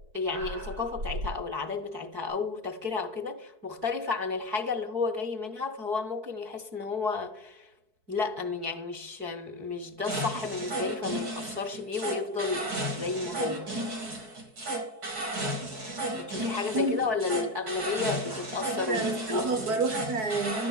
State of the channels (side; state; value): left; late; 4.6 ms